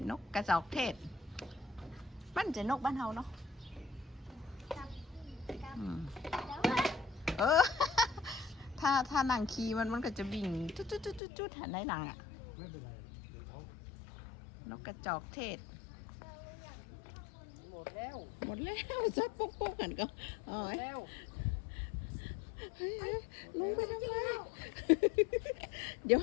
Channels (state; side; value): drops out; right; at 11.2 s